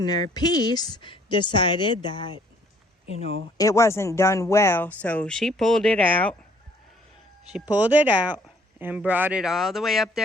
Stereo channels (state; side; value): normal; both; correlation 0.61